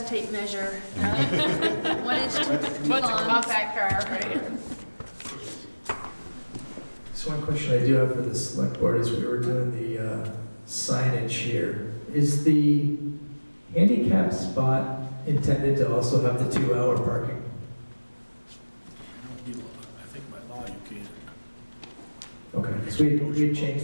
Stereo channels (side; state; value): both; inverted; correlation -1.00